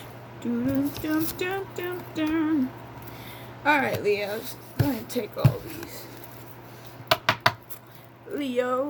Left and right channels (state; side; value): identical; both; correlation 1.00